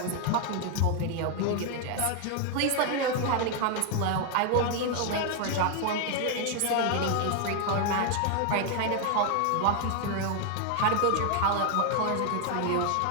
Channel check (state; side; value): different; both; correlation 0.00